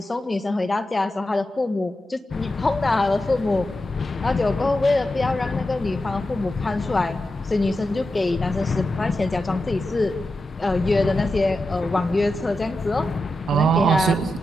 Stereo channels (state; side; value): normal; both; correlation 0.90